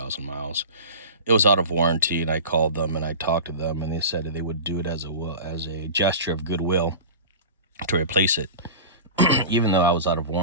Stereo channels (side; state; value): both; inverted; correlation -0.33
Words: miles. It was out of warranty, and I called them and I talked to them, and they said that they would do it as a gesture of goodwill to replace it, even though I was out of